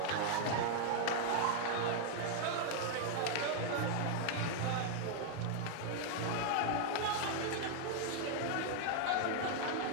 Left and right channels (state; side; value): different; both; correlation 0.00